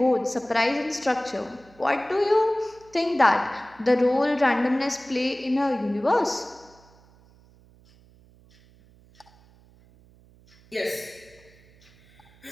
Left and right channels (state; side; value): noise; right; hum, 28 dB below the sound